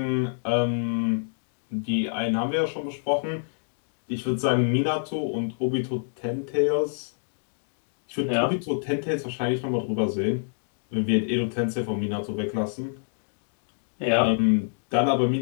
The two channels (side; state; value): right; silent; digital silence